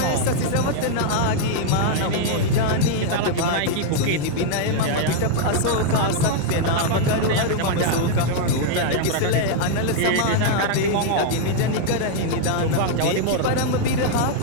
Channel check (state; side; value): different; both; correlation 0.00